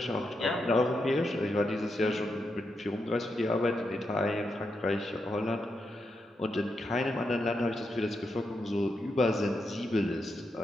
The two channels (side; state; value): both; normal; correlation 0.84